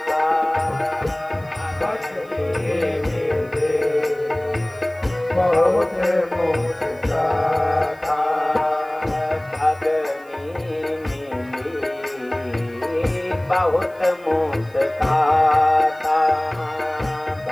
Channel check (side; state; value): right; noise; hiss, 29 dB below the sound